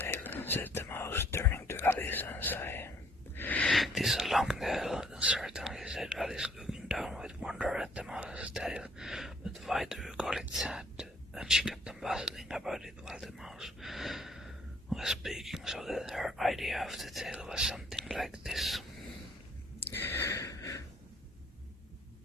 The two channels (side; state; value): both; normal; correlation 0.62